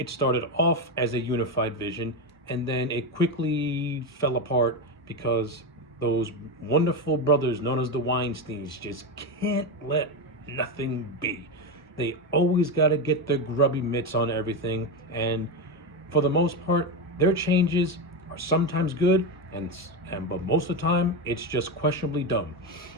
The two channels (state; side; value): normal; both; correlation 0.14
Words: started off as a unified vision, and then it quickly fell apart because those wonderful brothers known as the Weinsteins just can't let nothing be. They always got to get their grubby mitts on everything, and for the most part, their changes are sometimes good, but most of the time, it's just questionably dumb.